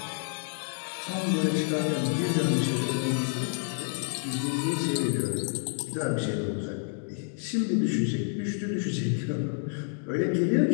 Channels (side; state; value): right; silent; 59 dB below the other